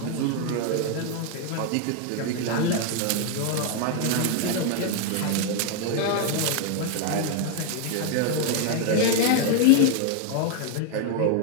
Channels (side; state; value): both; different; correlation 0.00